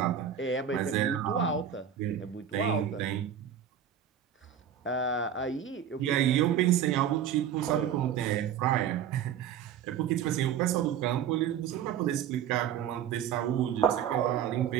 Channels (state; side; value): quieter; left; 9.1 dB